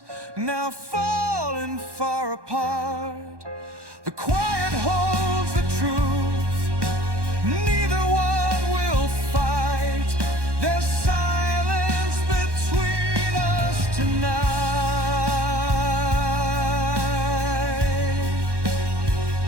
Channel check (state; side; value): late; left; 1.1 ms